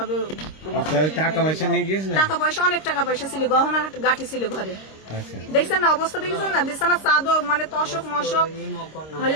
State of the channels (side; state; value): right; late; 26 ms